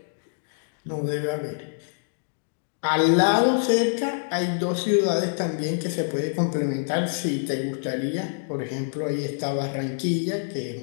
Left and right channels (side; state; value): right; silent; digital silence